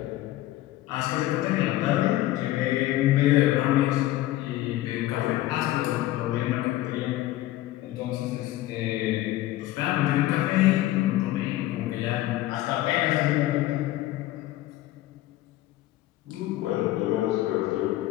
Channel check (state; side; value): quieter; right; 15.8 dB